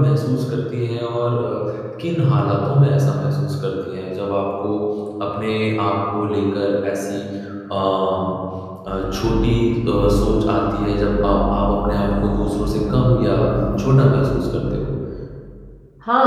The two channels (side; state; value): both; identical; correlation 1.00